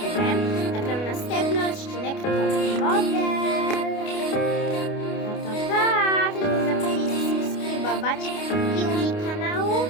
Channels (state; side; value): late; right; 29 ms